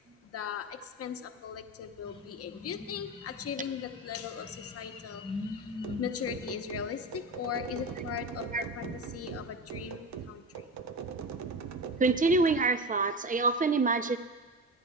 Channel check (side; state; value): both; normal; correlation 0.24